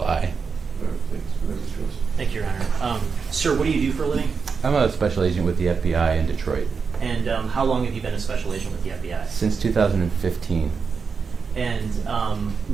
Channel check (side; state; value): left; quieter; 5.5 dB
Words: right, thanks. Go ahead, Mr. Joseph. Thank you, Your Honor. Sir, what do you do for a living? I'm a special agent with the FBI in Detroit. And how long have you been a special agent with the FBI? Since 2015. And